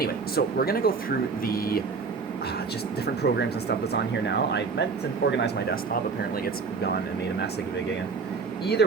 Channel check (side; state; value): left; quieter; 4.9 dB